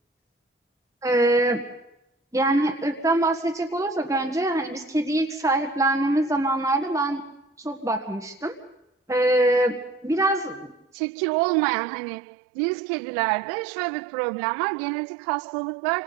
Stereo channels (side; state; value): left; drops out; at 10.9 s